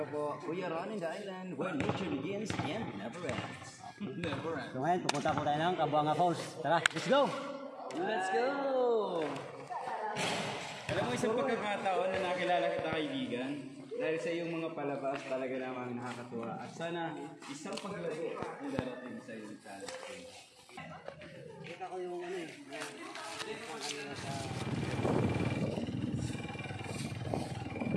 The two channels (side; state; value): both; identical; correlation 1.00